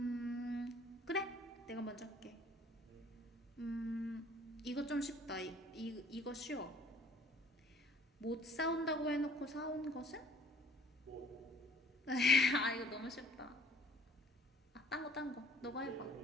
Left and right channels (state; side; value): normal; both; correlation 0.56